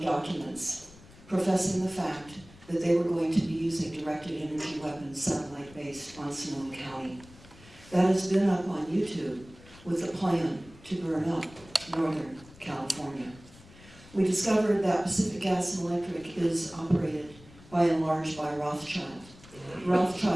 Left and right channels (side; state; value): left; noise; rumble, 22 dB below the sound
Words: documents professing the fact that they were going to be using directed energy weapons, satellite-based, on Sonoma County. That has been up on YouTube with a plan to burn up Northern California. We discovered that Pacific Gas and Electric is operated by and large by Rothschild.